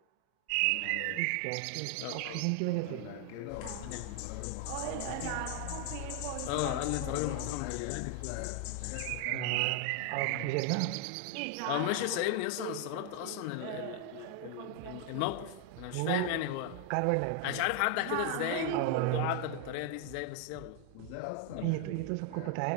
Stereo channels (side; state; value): both; different; correlation 0.00